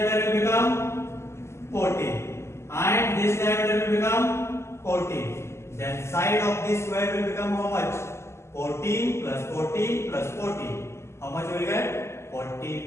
will become 40 and this diameter will become 40. Then side of this square will become how much? 14 plus 14 plus 40. How much will get?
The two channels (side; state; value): right; late; 0.13 ms